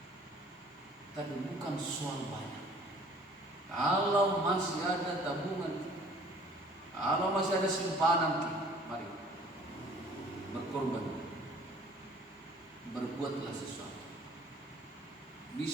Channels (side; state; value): both; normal; correlation 0.53